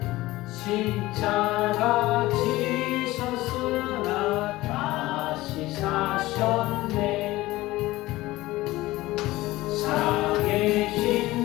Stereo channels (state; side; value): quieter; right; 18.2 dB